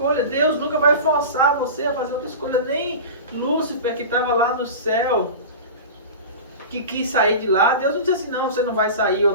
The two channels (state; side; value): inverted; both; correlation -0.30